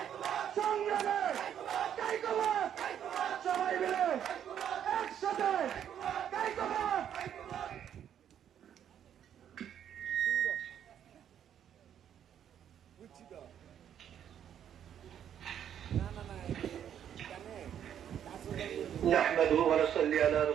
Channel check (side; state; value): left; quieter; 9.5 dB